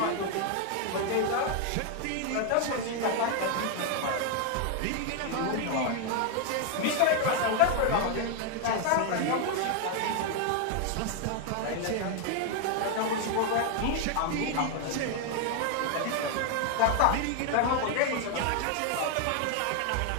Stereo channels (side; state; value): both; different; correlation 0.00